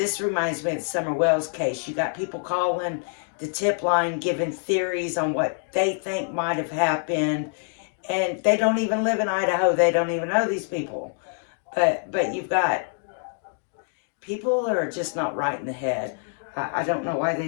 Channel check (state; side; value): silent; right; 58 dB below the other